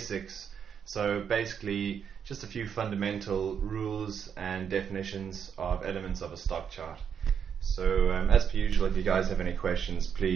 So basically just a few fundamental rules and definitions of elements of a stock chart. So as per usual, if you guys have any questions,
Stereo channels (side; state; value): left; quieter; 7.6 dB